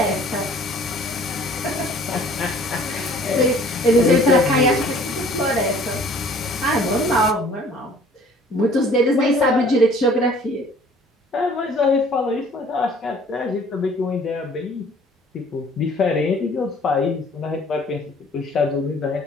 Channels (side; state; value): both; normal; correlation 0.53